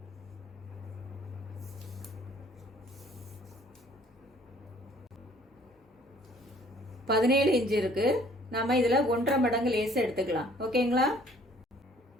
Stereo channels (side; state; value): both; normal; correlation 0.57